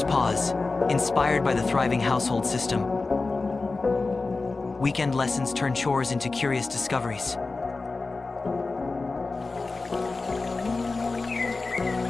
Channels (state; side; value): quieter; right; 3.7 dB